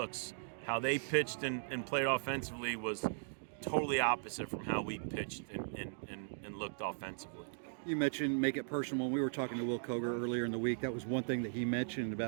How they pitched and played offensively was totally opposite from how we pitched and looked offensively. You mentioned make it personal. When we were talking to Will Koger earlier in the week, that was one thing that he mentioned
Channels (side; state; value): left; silent; digital silence